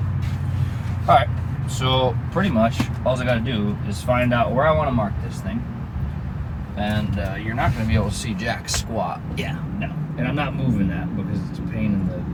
All right. So pretty much all I got to do is find out where I want to mark this thing, and you're not going to be able to see jack squat. Yeah, no. And I'm not moving that because it's a pain in the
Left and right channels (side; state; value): both; identical; correlation 1.00